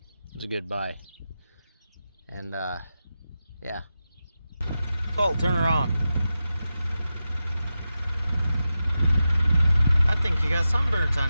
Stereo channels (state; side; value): inverted; both; correlation -0.91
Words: It was a good buy. And yeah. Colt, turn her on. I think you got sunburns